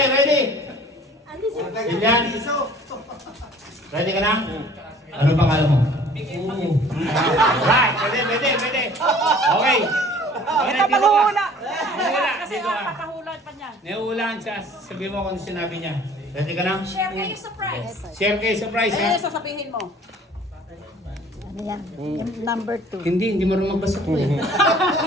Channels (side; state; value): both; normal; correlation 0.51